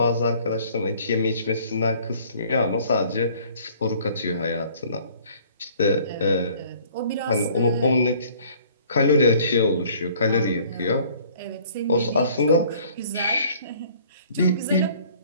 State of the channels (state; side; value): inverted; both; correlation -0.55